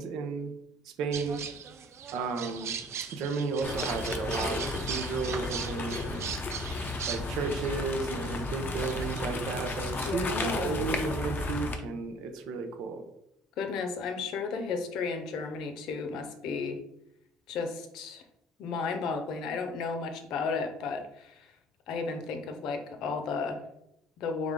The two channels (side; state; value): both; normal; correlation 0.52